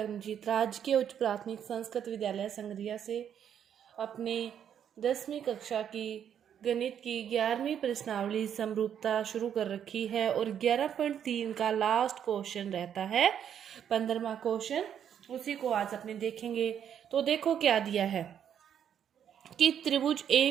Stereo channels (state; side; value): quieter; left; 9.0 dB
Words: राजकीय उच्च प्राथमिक संस्कृत विद्यालय संगरिया से अपने 10वीं कक्षा की गणित की 11वीं प्रश्नावली समरूपता शुरू कर रखी है और 11.3 का लास्ट क्वेश्चन रहता है 15वां क्वेश्चन, उसी को आज अपने देखेंगे। तो देखो क्या दिया है कि त्रिभुज